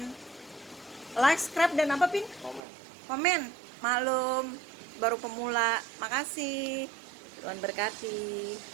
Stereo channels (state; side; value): drops out; left; at 2.6 s